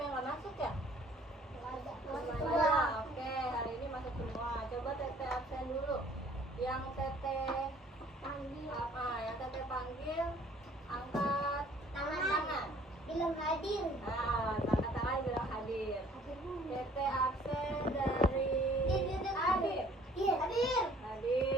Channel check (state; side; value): normal; both; correlation 0.56